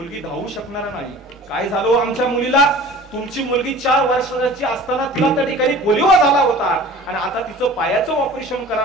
धावू शकणार नाही. काय झालं आमच्या मुलीला? तुमची मुलगी 4 वर्षाची असताना तिला त्या ठिकाणी पोलिओ झाला होता आणि आता तिचं पायाचं ऑपरेशन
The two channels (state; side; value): normal; both; correlation 0.43